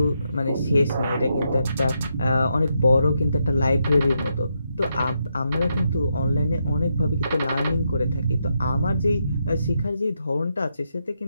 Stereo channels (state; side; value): inverted; both; correlation -0.81